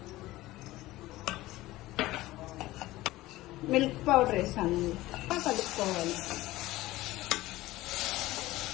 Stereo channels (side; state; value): right; quieter; 17.5 dB